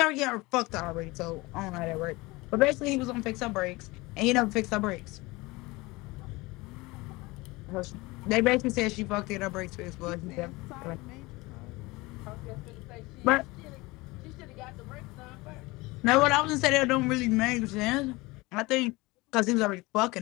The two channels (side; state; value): right; quieter; 22.5 dB